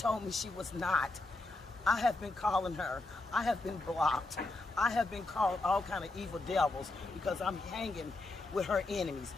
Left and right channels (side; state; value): right; quieter; 3.1 dB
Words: me she was not. I have been calling her. I have been blocked. I have been called all kind of evil devils because I'm hanging with her enemies.